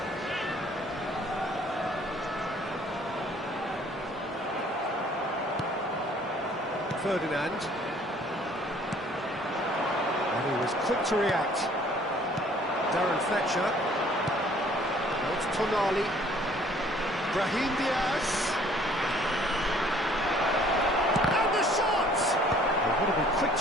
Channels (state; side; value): normal; both; correlation 0.57